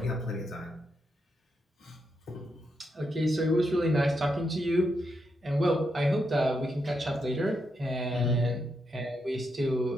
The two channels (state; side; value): normal; both; correlation 0.82